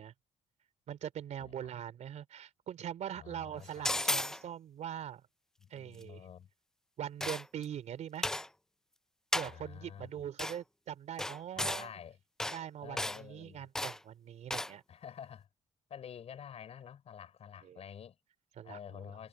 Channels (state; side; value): normal; both; correlation 0.48